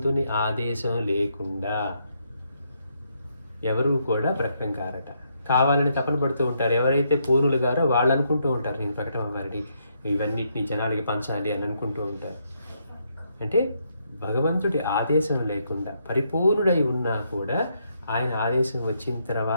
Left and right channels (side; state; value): both; inverted; correlation -0.76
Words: ఆదేశం లేకుండా ఎవరు కూడా ప్రకటన కారట. కావాలని తపన పడుతూ ఉంటారు. ఎవరైతే పూర్ణులు గారో వాళ్ళు అనుకుంటూ ఉంటారు నేను ప్రకటన అవ్వాలి, ఇవన్నిటిని జనాలకి పంచాలి అని అనుకుంటూ ఉంటారు. అంటే భగవంతుడి ఆదేశం లేకుండా పరిపూర్ణుడై ఉన్నా కూడా ఆయన ఆదేశం వచ్చిన